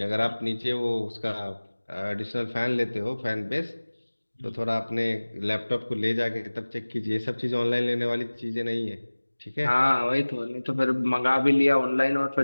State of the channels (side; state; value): both; inverted; correlation -1.00